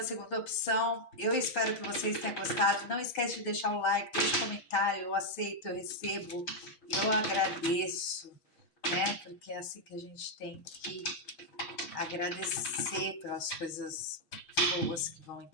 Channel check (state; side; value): late; right; 6.1 ms